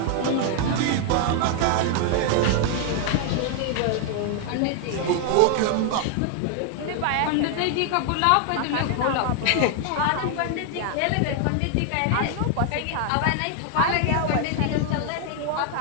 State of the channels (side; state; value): both; different; correlation 0.00